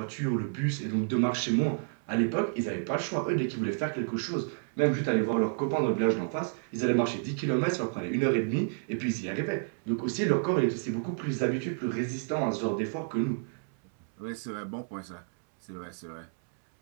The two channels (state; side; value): silent; left; 58 dB below the other